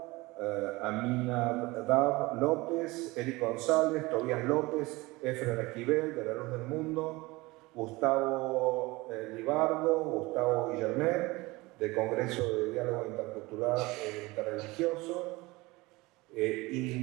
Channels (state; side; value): quieter; left; 22.0 dB